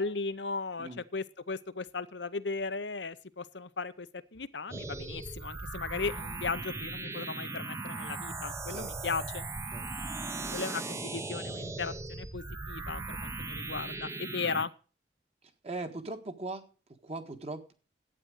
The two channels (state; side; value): normal; both; correlation 0.03